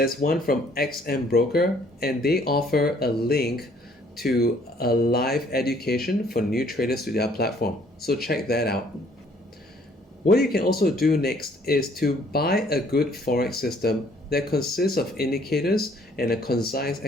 one from XM Broker, and they offer a link to a live education for new traders to their platform. So check that out. What you can also do next is to buy a good Forex system that consists of indicators and a concise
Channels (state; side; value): normal; both; correlation 0.61